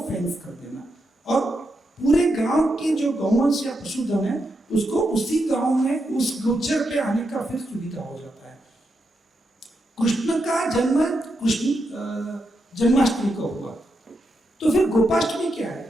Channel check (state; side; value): normal; both; correlation 0.84